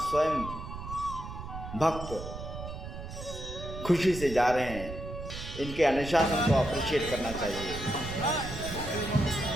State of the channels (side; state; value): right; noise; rumble, 9 dB below the sound